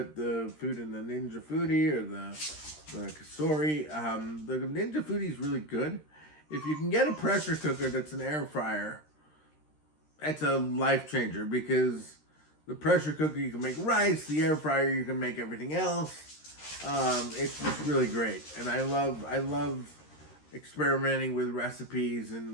the food in the Ninja Foodi or the Kasori. The Ninja Foodi is really good. If you can get a pressure cooker that's an air fryer, that's a life changer, because the pressure cooker you can make rice, the air fryer you can make everything else. It's just really great, and I love experimenting with recipes.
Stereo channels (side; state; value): right; late; 13 ms